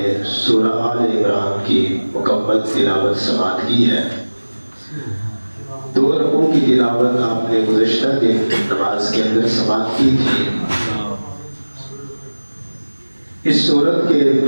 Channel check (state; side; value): inverted; both; correlation -1.00